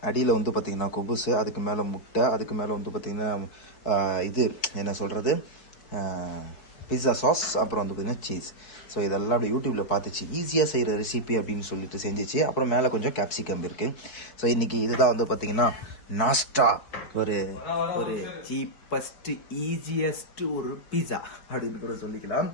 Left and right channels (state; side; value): late; right; 4.7 ms